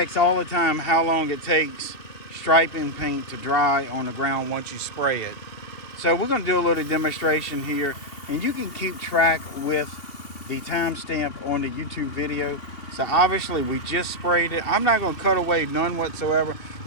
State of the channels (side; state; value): right; late; 3.0 ms